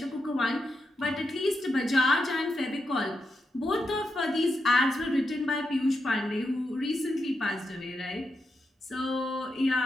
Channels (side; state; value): both; normal; correlation 0.85